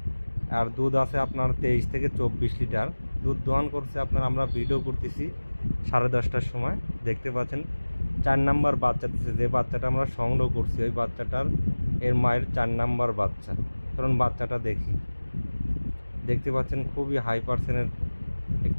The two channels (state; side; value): inverted; both; correlation -1.00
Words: আর দুধ আছে আপনার 23 থেকে 24 লিটার দুধ দোয়ান করছে। আপনার আমরা ভিডিও করতেছি 10:30টার সময়। দেখতে পাচ্ছেন 4 নাম্বার বাচ্চা দিচ্ছে। যে বাচ্চাটা আমরা সংগ্রহ করছি ওই বাচ্চাটার এর মায়ের 4 নাম্বার বাচ্চা। কারণ বাচ্চাটা দেখতে পাচ্ছেন খুবই হাই পার্সেন্টের